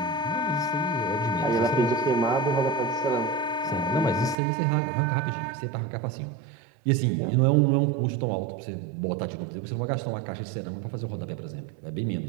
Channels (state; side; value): drops out; left; at 4.4 s